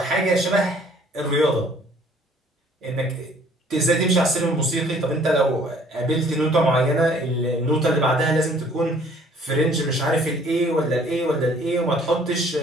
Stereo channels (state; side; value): normal; both; correlation 0.57